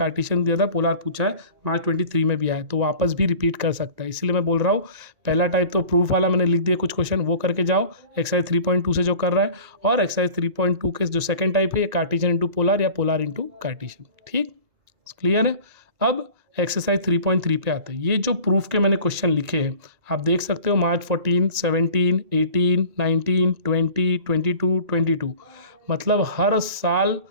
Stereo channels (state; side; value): late; left; 1.9 ms